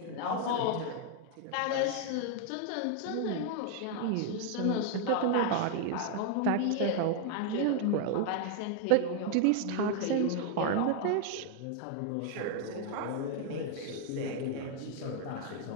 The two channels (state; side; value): different; both; correlation 0.00